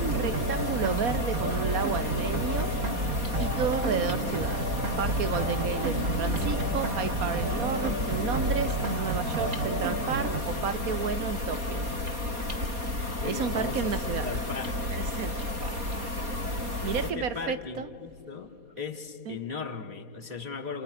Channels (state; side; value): late; left; 4.3 ms